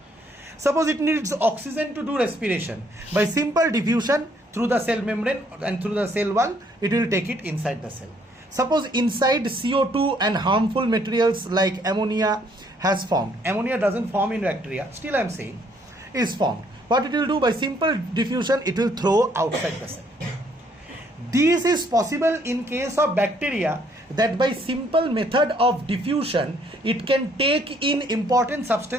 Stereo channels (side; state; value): both; normal; correlation 0.66